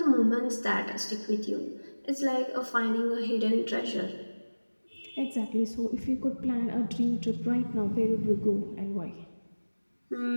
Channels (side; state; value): both; inverted; correlation -1.00